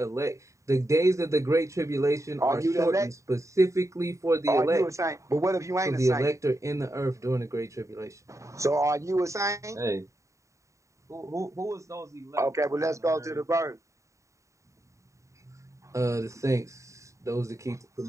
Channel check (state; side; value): late; left; 0.15 ms